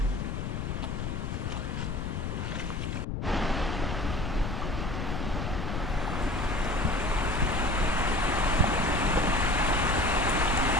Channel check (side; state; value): left; noise; rumble, 3 dB below the sound